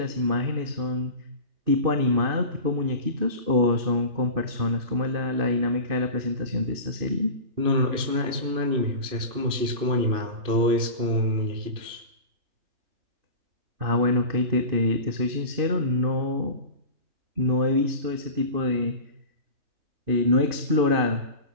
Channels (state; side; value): late; left; 2.6 ms